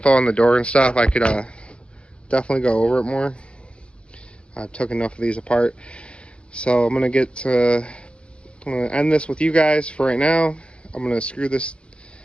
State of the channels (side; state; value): right; late; 0.058 ms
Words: on the door and stuff, I could definitely go over it more. I've took enough of these apart. So I'm gonna end this with you guys for right now. I'm gonna screw this